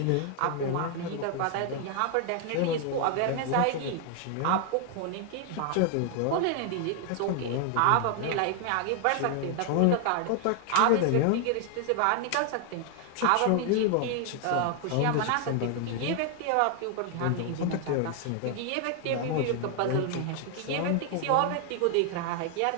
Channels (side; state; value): both; different; correlation 0.00